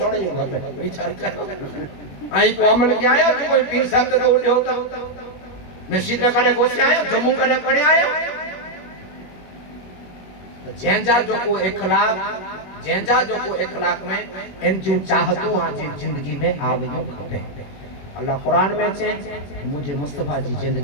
जो पे विचार कर आई को अमल के आया जो कोई पीर साहब तो उठे होता मस्जिद में करे गोसे आयो जम्मू करे पड़े आयो तो जंजा जो को इखलाक में इन जो चाहतू आज जिंदगी में आवयो खपे अल्लाह कुरान में छे मुझे मुस्तफा जी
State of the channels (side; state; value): right; late; 21 ms